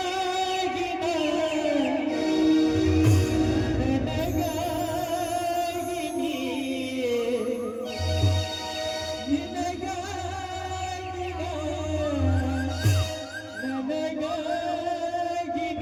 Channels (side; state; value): both; identical; correlation 1.00